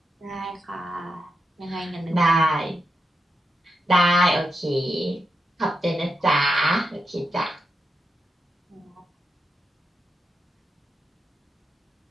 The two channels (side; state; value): both; normal; correlation 0.86